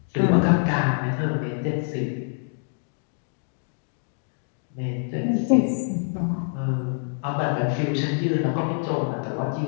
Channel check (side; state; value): right; silent; 61 dB below the other